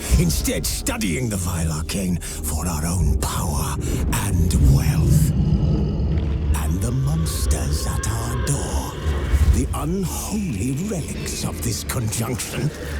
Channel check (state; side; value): identical; both; correlation 1.00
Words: instead studying the vile arcane for our own power and wealth. And the monsters at our door, the unholy relics of this conjunction,